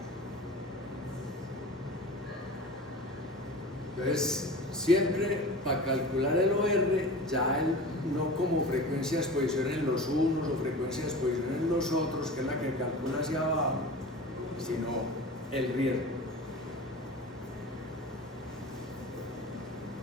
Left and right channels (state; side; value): normal; both; correlation 0.35